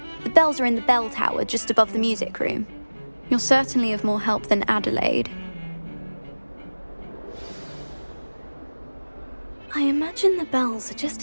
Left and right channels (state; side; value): inverted; both; correlation -1.00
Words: The bells are in the bell tower just above the music room. You're certainly of more help than Adelaide. I imagine the bells are